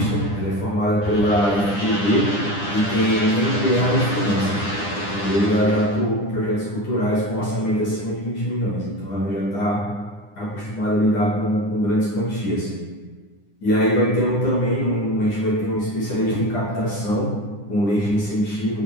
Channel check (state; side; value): late; right; 9.9 ms